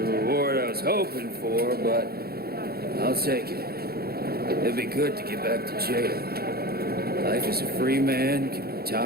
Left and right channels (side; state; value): left; late; 0.45 ms